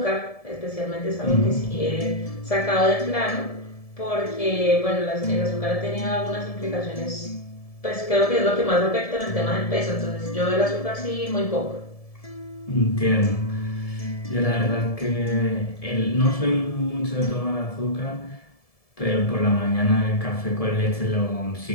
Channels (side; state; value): right; late; 1.7 ms